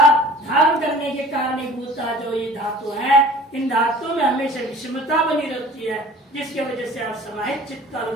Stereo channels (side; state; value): both; normal; correlation 0.46